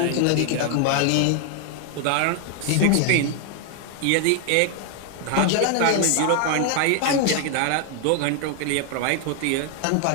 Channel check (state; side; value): different; both; correlation 0.00